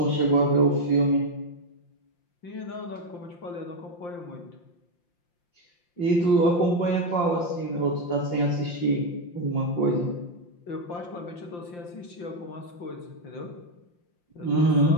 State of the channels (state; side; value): late; right; 5.7 ms